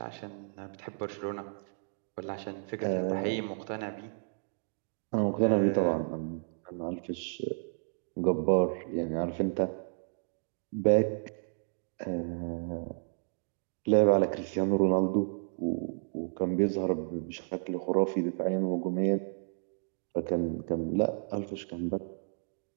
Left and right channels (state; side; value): silent; left; digital silence